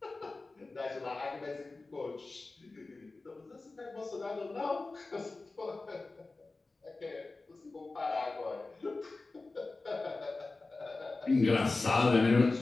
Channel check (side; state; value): right; quieter; 3.5 dB